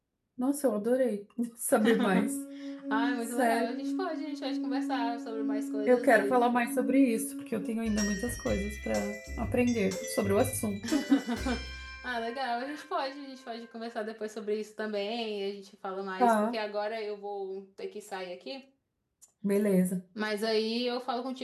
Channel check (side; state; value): both; identical; correlation 1.00